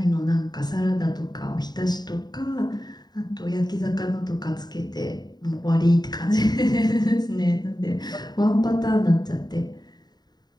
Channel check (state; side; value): late; right; 0.20 ms